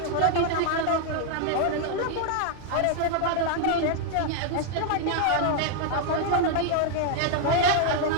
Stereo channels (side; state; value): both; different; correlation 0.00